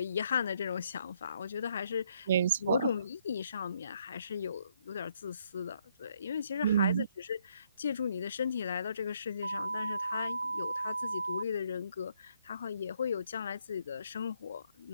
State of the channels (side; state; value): both; inverted; correlation -0.71